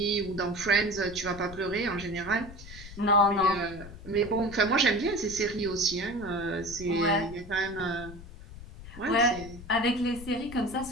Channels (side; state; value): left; noise; rumble, 15 dB below the sound